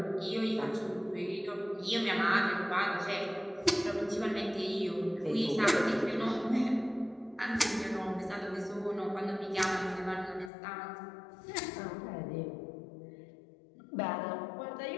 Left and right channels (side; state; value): right; drops out; at 10.5 s